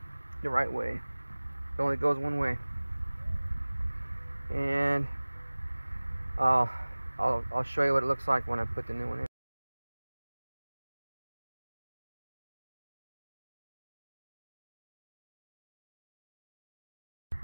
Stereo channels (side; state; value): both; inverted; correlation -1.00